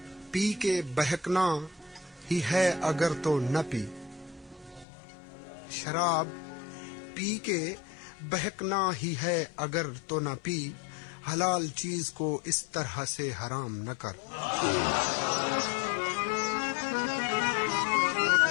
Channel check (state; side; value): drops out; right; at 4.9 s